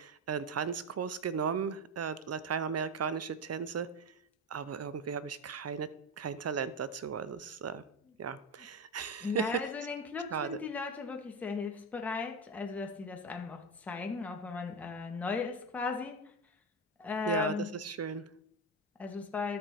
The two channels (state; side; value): normal; both; correlation 0.15